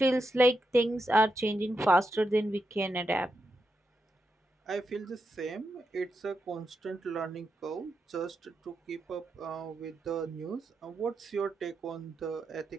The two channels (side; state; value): both; normal; correlation 0.85